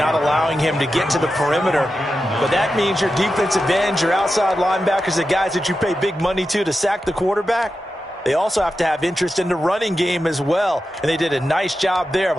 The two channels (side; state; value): both; normal; correlation 0.91